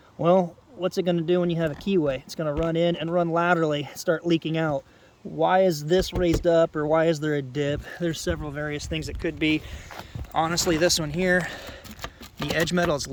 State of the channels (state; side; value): identical; both; correlation 1.00